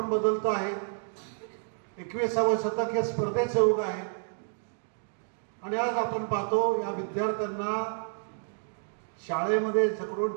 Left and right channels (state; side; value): silent; left; digital silence